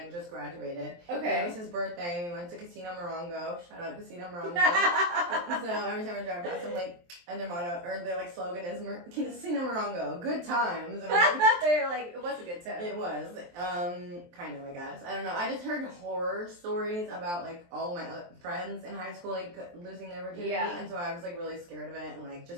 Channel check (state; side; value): late; left; 23 ms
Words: just graduated. Okay. It was his birthday. We went to Casino Morongo. Shout out Casino Morongo. So every time I drive past, I'm like, and their motto or their like slogan is Casino Morongo, good times. And they're like, it was a good time. It was, kind of, I guess. I don't know. I just heard horror stories about like all of my other friends in high school like losing their virginity, and so I was like really scared of it and like